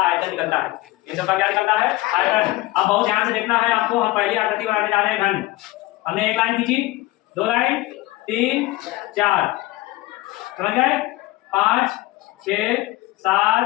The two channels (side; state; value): right; quieter; 18.7 dB